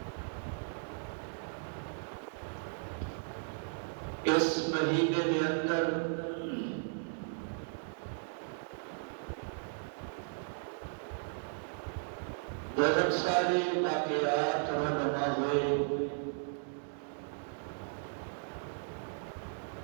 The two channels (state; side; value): silent; left; digital silence